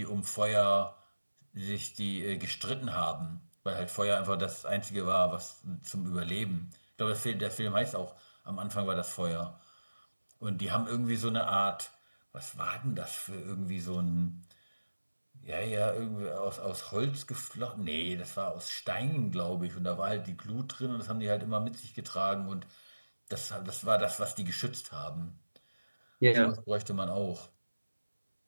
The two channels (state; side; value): inverted; both; correlation -1.00